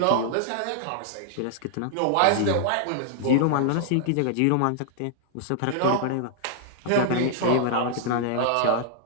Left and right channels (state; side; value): different; both; correlation -0.01